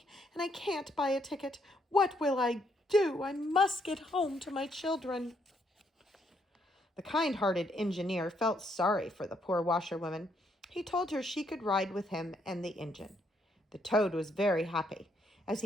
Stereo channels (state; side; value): normal; both; correlation 0.73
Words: and I can't buy a ticket. What will I do? I must get home to my children. The kind-hearted engineer felt sorry for the poor washerwoman. He told her she could ride with him and the engine. The toad was very happy. As